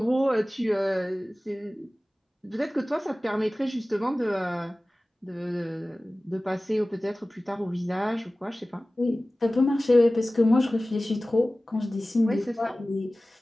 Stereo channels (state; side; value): normal; both; correlation 0.97